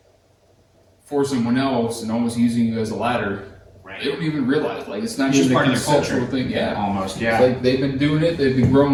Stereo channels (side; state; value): both; identical; correlation 1.00